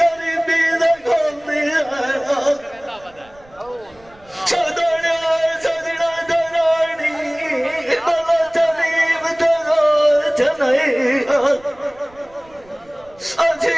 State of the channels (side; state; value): right; noise; rumble, 27 dB below the sound